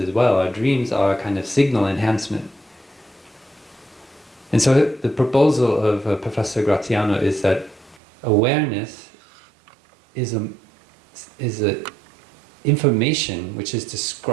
well. Our dreams are a kind of signal enhancement. And so the proposal of Professor Graziano is that awareness is a information which is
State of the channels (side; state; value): left; drops out; at 8.0 s